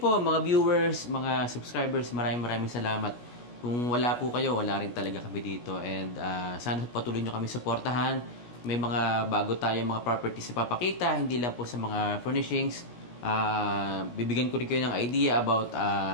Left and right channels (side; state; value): right; late; 17 ms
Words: mga viewers, mga subscribers, maraming salamat. Kung wala po kayo, wala rin talaga kami dito. And sana patuloy nyo kami suportahan. May mga bago tayong mga properties na papakita, hindi lang po sa mga furnishings. Bibigyan ko rin kayo ng idea about